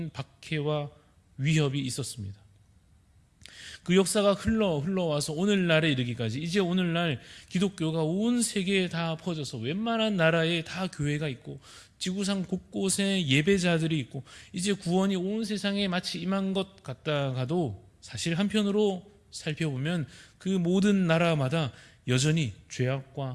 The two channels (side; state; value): both; identical; correlation 1.00